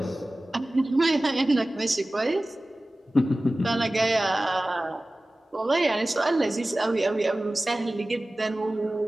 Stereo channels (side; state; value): both; normal; correlation 0.97